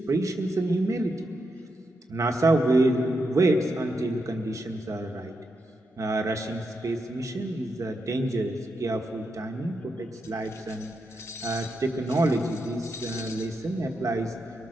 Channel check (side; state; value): both; normal; correlation 0.84